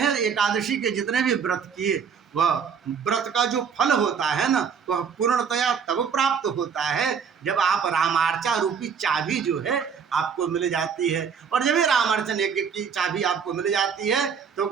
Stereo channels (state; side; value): quieter; left; 6.6 dB